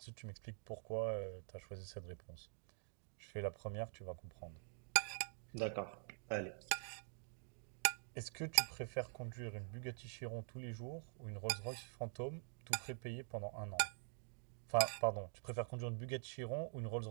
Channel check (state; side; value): silent; left; digital silence